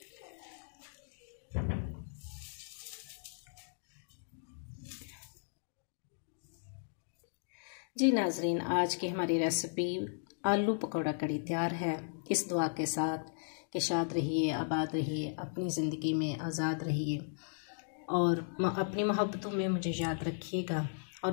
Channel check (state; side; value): silent; right; digital silence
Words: जी नाजरीन, आज की हमारी रेसिपी आलू पकौड़ा कड़ी तैयार है, इस दुआ के साथ कि शाद रहिए, आबाद रहिए, अपनी ज़िंदगी में आज़ाद रहिए और अपनी मोहब्बतों में मुझे याद रखिएगा